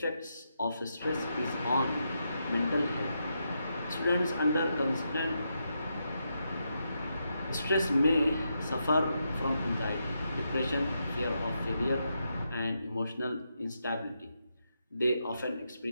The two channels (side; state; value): both; inverted; correlation -0.83